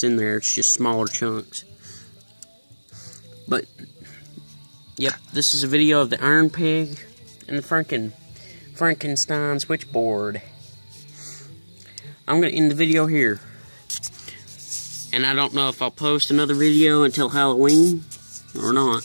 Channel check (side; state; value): both; inverted; correlation -1.00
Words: in there. It's just smaller chunks. But yep, this is a video of the Iron Pig and the Frankenstein switchboard. I'm going to end the video here. And I don't know if I'll post another video until Halloween or not.